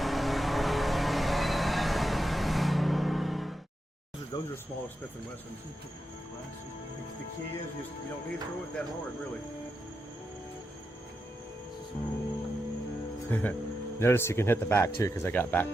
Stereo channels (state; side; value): normal; both; correlation 0.87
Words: Those are smaller Smith & Wessons. The key is you don't need to throw it that hard, really. Notice you can hit the back too because I got back